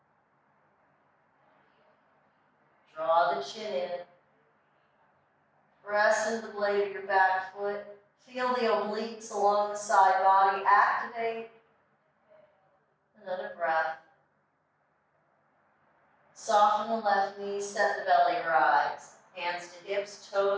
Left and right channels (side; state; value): both; identical; correlation 1.00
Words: Draw the chin in. Press into the blade of your back foot. Feel the obliques along the side body. Activate. Another breath. Soften the left knee, set the belly rise. Hands to hips,